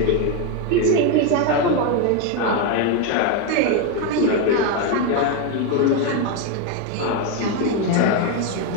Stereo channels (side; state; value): both; different; correlation 0.02